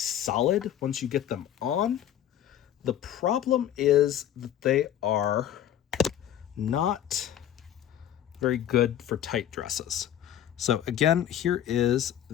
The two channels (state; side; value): quieter; right; 10.8 dB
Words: once you get them on. The problem is that they are not very good for tight dresses. So again, here is